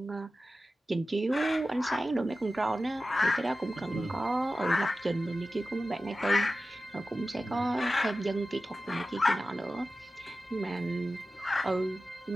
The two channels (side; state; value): both; normal; correlation 0.94